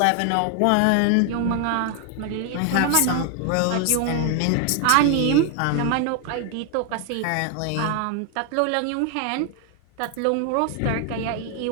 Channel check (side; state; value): both; different; correlation 0.00